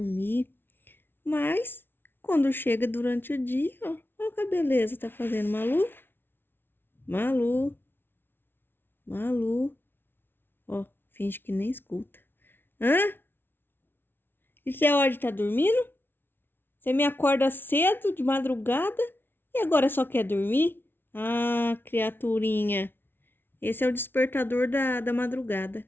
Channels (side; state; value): right; late; 0.11 ms